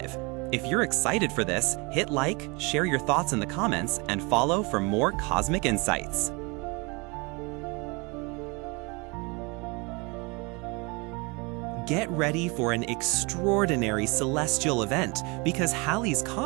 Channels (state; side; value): quieter; left; 28.6 dB